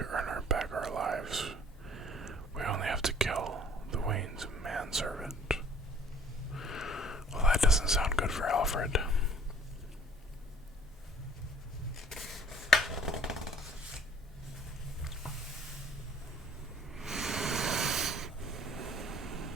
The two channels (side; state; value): both; normal; correlation 0.53